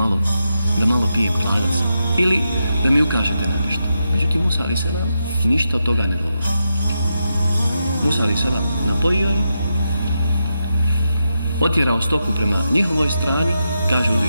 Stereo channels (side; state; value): both; inverted; correlation -0.86